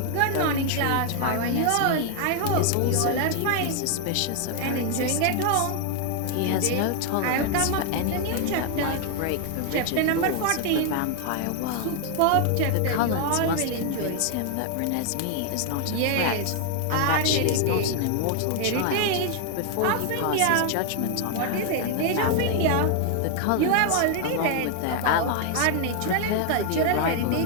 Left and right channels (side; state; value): both; different; correlation 0.00